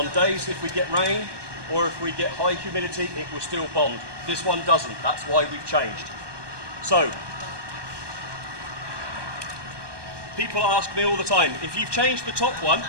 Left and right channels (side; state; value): left; late; 1.2 ms